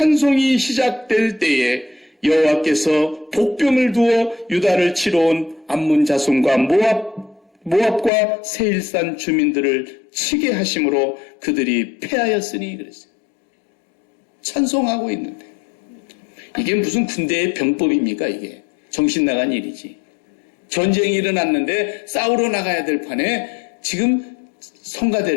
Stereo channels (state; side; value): drops out; right; at 8.1 s